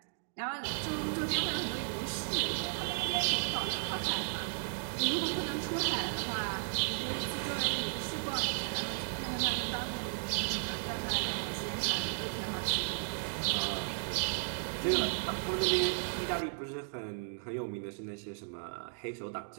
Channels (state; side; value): silent; left; digital silence